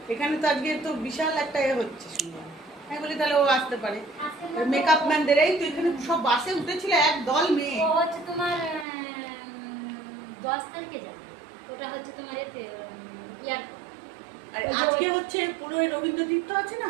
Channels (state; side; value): drops out; left; at 8.8 s